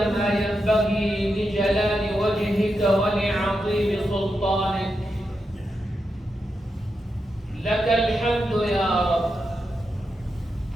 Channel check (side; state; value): both; normal; correlation 0.87